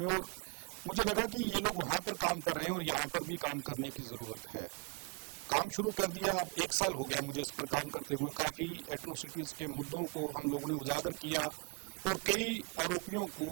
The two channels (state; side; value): quieter; left; 33.7 dB